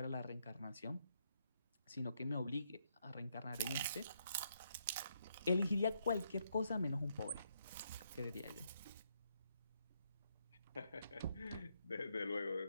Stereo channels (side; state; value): both; inverted; correlation -0.76